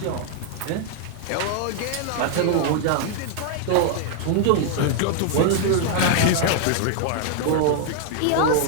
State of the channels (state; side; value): different; both; correlation 0.00